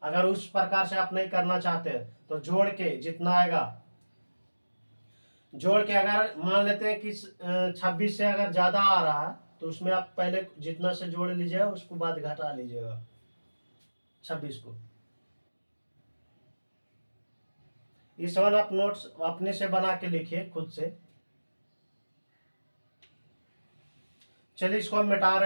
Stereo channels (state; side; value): inverted; both; correlation -1.00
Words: अगर उस प्रकार से आप नहीं करना चाहते तो जोड़ के जितना आएगा, जोड़ के अगर मान लेते हैं कि 26 से अगर ज्यादा आ रहा है तो उसमें आप पहले जितना से जोड़ लीजिएगा उसको बाद घटा लीजिएगा 26 को। इस वन आप नोट्स अपने से बना के लिखिए खुद से। चलिए इसको हम मिटा